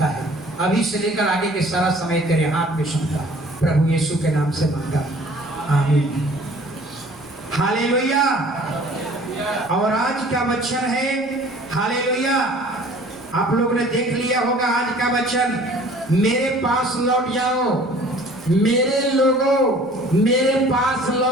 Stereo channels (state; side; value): noise; right; rumble, 29 dB below the sound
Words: है। अभी से लेकर आगे के सारा समय तेरे हाथ में सौंपा, प्रभु यीशु के नाम से मांगा, आमीन। हालेलुया। और आज का वचन है हालेलुया। आप लोगों ने देख लिया होगा आज का वचन, मेरे पास लौट जाओ, मेरे लोगों मेरे पास